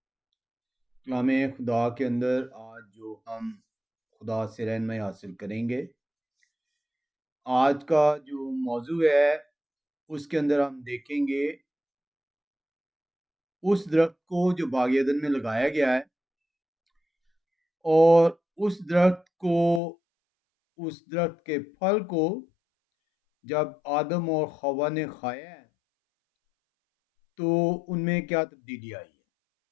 خدا کے اندر آج جو ہم خدا سے رہنمائی حاصل کریں گے، آج کا جو موضوع ہے اس کے اندر ہم دیکھیں گے اس درخت کو جو باغ عدن میں لگایا گیا ہے، اور اس درخت کے پھل کو جب آدم اور حوا نے کھایا ہے تو ان میں کیا تبدیلی آئی ہے۔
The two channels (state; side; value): drops out; right; at 19.8 s